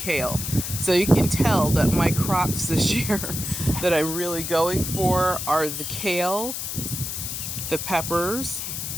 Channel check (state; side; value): noise; left; hiss, 5 dB below the sound